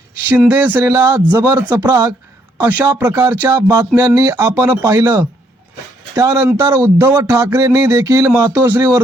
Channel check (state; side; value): normal; both; correlation 0.70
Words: शिंदे सेनेला जबर चपराक अशा प्रकारच्या बातम्यांनी आपण पाहिलं. त्यानंतर उद्धव ठाकरेंनी देखील